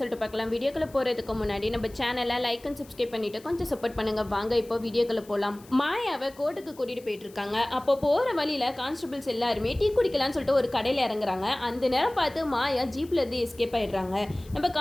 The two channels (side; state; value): left; noise; hiss, 24 dB below the sound